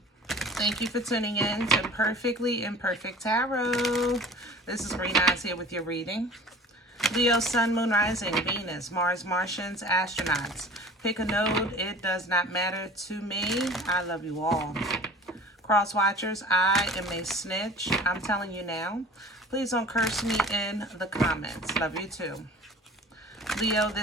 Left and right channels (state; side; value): normal; both; correlation 0.43